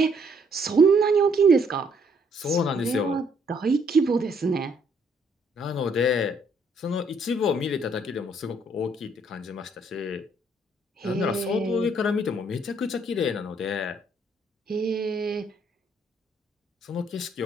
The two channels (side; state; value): both; normal; correlation 0.67